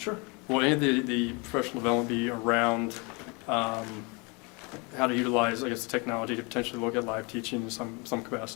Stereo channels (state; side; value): quieter; right; 29.8 dB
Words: Sure. will any of the professional development be around how to utilize, I guess, the technology to potentially look at live teaching in some